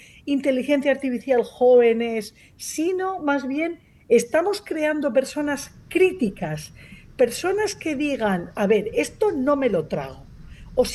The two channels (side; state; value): both; identical; correlation 1.00